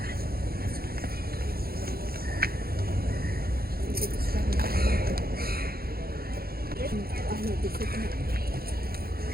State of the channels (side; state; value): left; late; 0.44 ms